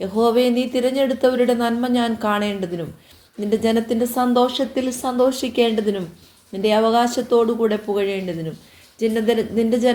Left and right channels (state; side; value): identical; both; correlation 1.00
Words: യഹോവയെ നീ തിരഞ്ഞെടുത്തവരുടെ നന്മ ഞാൻ കാണേണ്ടതിനും നിന്റെ ജനത്തിൻ്റെ സന്തോഷത്തിൽ സന്തോഷിക്കേണ്ടതിനും നിന്റെ അവകാശത്തോടുകൂടെ പുകഴേണ്ടതിനും നിന്റെ